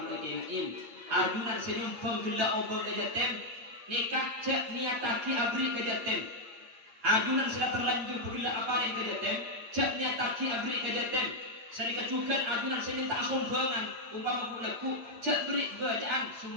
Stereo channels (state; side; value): late; left; 8.5 ms